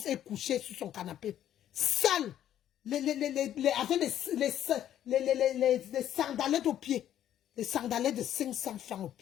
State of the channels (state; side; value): quieter; right; 11.2 dB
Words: est couché sur son canapé. Sale. Avec les sandalettes aux pieds. Les sandalettes de 500 francs aux